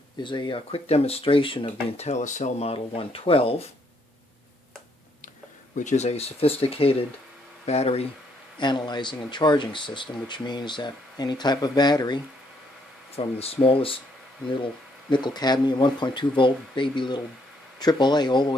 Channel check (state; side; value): normal; both; correlation 0.71